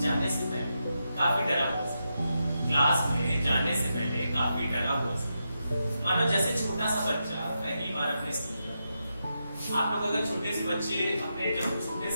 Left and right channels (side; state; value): both; inverted; correlation -0.86